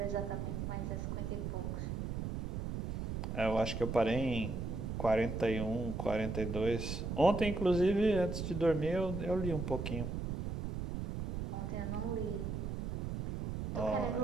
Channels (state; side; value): noise; right; rumble, 3 dB below the sound